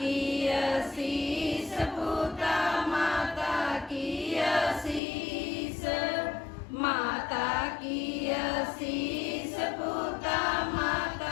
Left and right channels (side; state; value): right; drops out; at 5.0 s